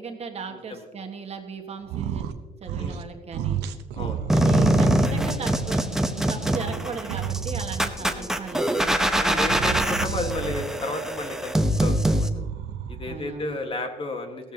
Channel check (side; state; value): both; normal; correlation 0.75